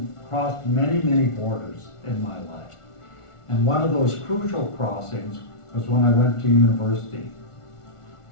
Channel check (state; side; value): late; right; 1.4 ms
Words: crossed many, many borders in my life. And one of those crucial crossings was when I went to university.